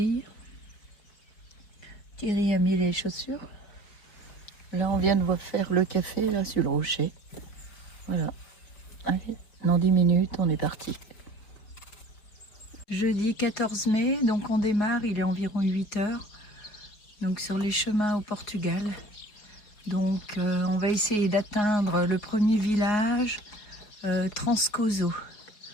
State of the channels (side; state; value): right; late; 4.6 ms